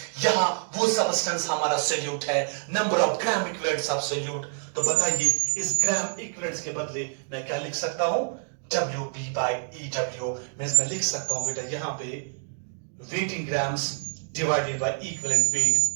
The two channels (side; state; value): left; silent; digital silence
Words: यहां वो सबस्टेंस हमारा सोल्यूट है, number of gram equivalents of solute, तो बताइए इस ग्राम इक्विवेलेंट्स के बदले मैं क्या लिख सकता हूं, WB by EW। मैं लिख सकता हूं बेटा यहां पे waiting grams divided by equivalent weight